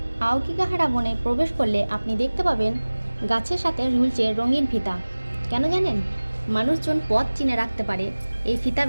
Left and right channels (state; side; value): inverted; both; correlation -1.00